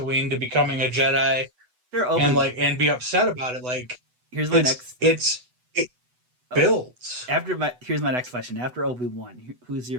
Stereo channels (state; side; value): late; left; 8.1 ms